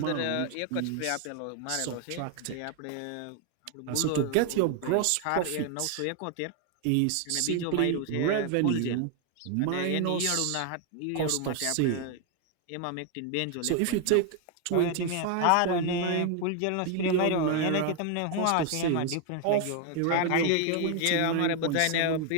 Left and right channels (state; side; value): different; both; correlation 0.00